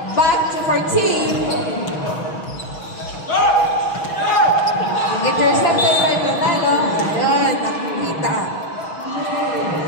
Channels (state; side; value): late; right; 6.3 ms